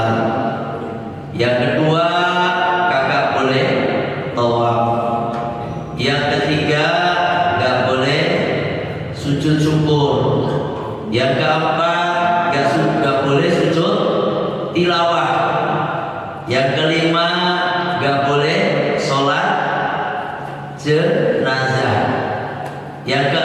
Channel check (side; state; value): both; identical; correlation 1.00